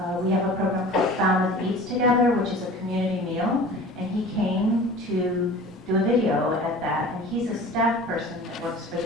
We have a program called Falmouth Eats Together, which is a community meal, and he came to do a video at that, and he's a staff person that works for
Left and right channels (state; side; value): normal; both; correlation 0.41